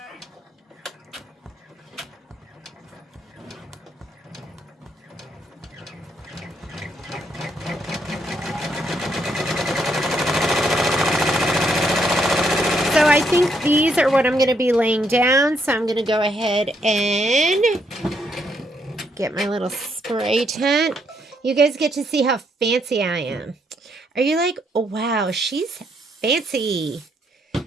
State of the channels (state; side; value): normal; both; correlation 0.74